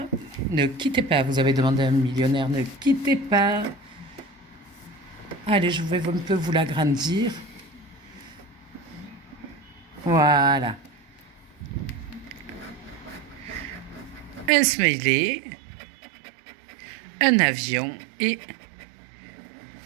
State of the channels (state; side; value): drops out; left; at 14.5 s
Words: Ne quittez pas, vous avez demandé un millionnaire. Ne quittez pas. Allez, je vais un peu vous l'agrandir. Voilà. Un smiley, un avion et